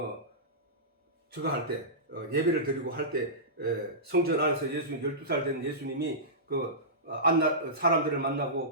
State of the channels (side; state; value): both; normal; correlation -0.18